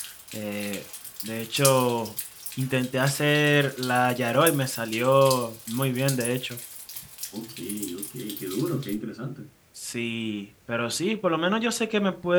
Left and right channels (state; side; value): identical; both; correlation 1.00